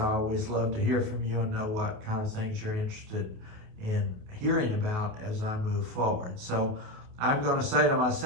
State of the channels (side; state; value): left; late; 28 ms